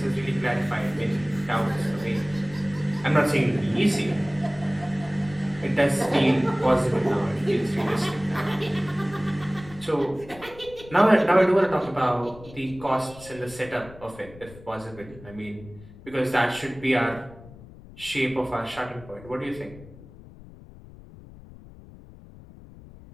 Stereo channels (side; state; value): left; noise; rumble, 19 dB below the sound